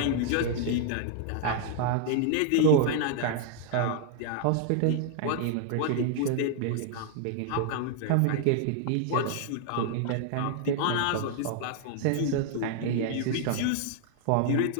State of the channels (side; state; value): both; different; correlation 0.00